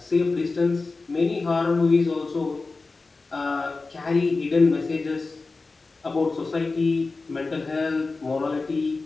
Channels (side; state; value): right; quieter; 3.8 dB